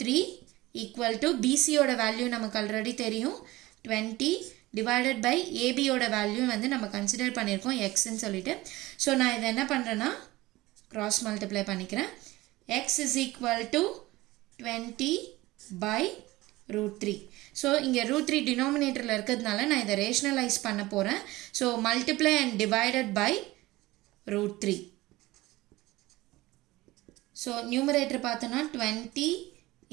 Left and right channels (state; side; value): quieter; left; 19.0 dB